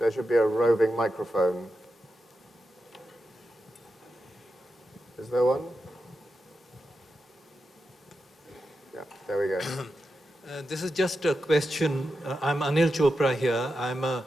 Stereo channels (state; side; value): normal; both; correlation 0.89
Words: should be a roving microphone. Is there one? Yeah, there we go. This is just a question. I'm Anil Chopra here. I'm a